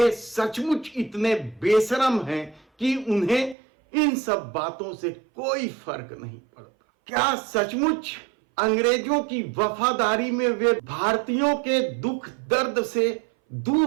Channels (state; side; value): drops out; left; at 3.6 s